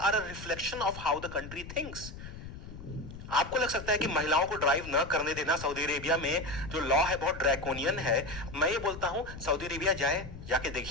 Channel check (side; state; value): left; noise; rumble, 12 dB below the sound